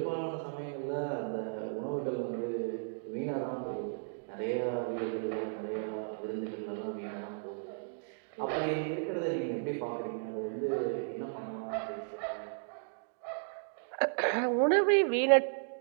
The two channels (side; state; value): left; silent; digital silence